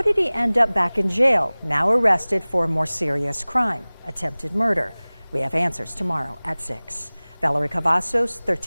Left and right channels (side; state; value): both; inverted; correlation -1.00